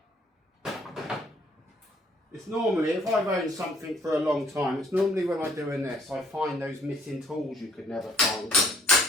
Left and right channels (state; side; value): normal; both; correlation 0.60